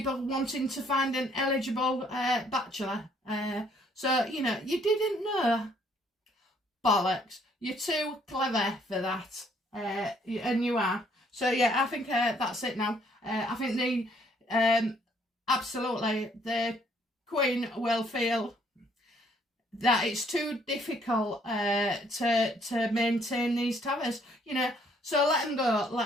wanting to find an eligible bachelor? So, you know, you didn't know. Bollocks. You're too clever for that. And you are. So, yeah, I think that's it now. I think absolutely, the Queen will feel that it's too difficult to maintain these towers, you know. So let them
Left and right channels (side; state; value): both; normal; correlation 0.65